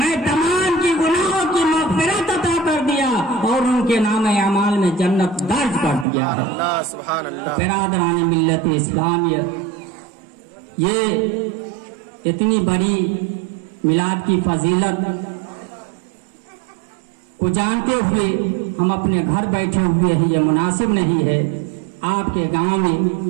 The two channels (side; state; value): left; drops out; at 6.1 s